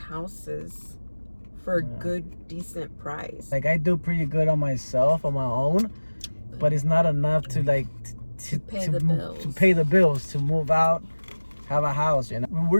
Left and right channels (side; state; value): both; inverted; correlation -1.00